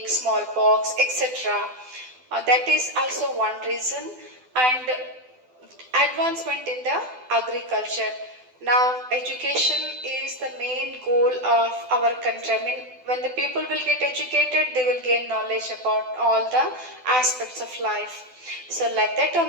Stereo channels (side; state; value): left; late; 12 ms